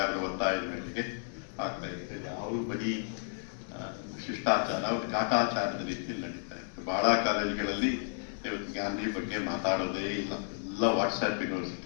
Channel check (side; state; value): right; silent; 56 dB below the other